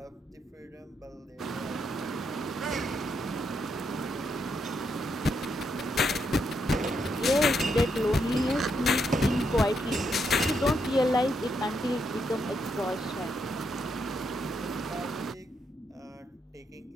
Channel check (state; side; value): normal; both; correlation 0.79